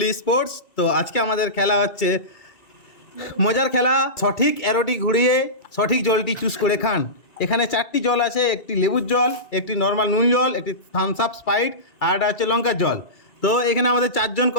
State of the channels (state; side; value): late; right; 2.2 ms